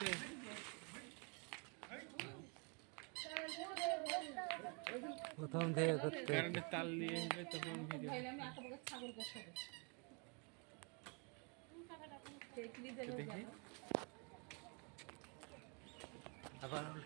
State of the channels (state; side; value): quieter; left; 35.3 dB